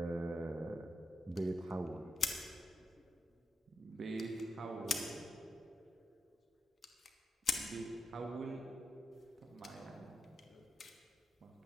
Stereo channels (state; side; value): normal; both; correlation 0.85